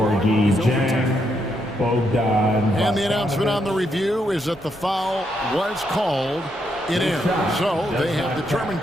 Jang, Bogdan. And the announcement on the review is that the foul was called. It is. So they have determined,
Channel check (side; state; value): both; normal; correlation 0.78